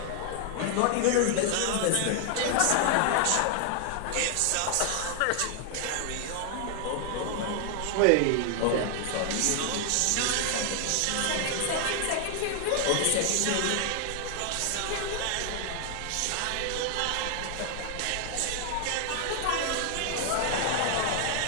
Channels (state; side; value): different; both; correlation 0.00